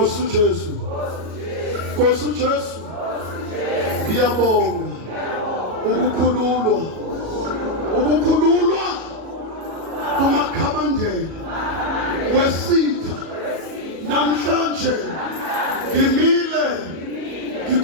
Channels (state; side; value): late; left; 37 ms